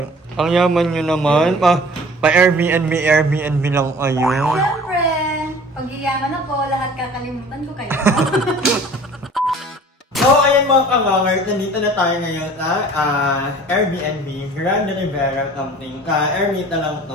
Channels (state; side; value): normal; both; correlation 0.47